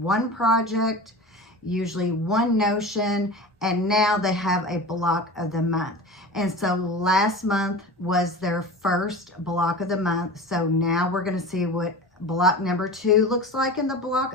project, usually one notion, and now they have a block of the month. And so last month was their first block of the month. So now we're going to see what block number 2 looks like in the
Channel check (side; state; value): both; normal; correlation 0.33